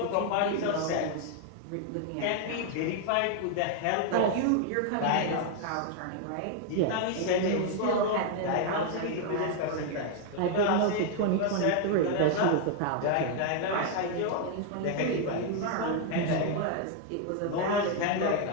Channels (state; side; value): different; both; correlation 0.00